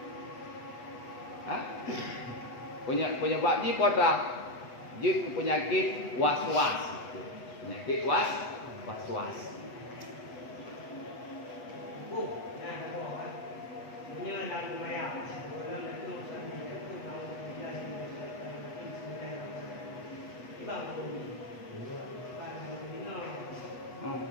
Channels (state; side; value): late; right; 8.2 ms